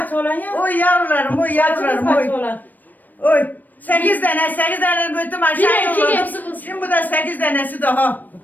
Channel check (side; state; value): right; late; 0.086 ms